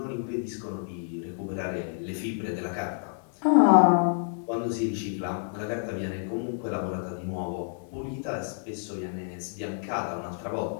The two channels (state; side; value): silent; right; digital silence